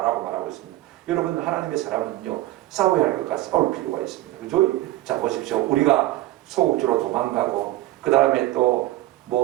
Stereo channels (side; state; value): left; quieter; 16.5 dB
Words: 라고 말하고 있습니다. 여러분 하나님의 사람은요 싸워야 할 것과 싸울 필요가 있습니다. 그죠? 자 보십시오. 우리가 소극적으로 도망가고, 그 다음에 또